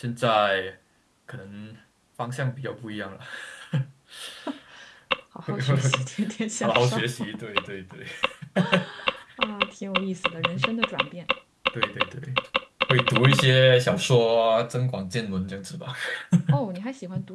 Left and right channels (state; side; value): identical; both; correlation 1.00